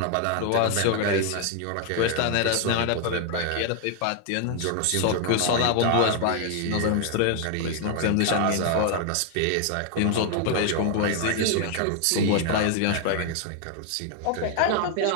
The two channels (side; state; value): both; different; correlation 0.00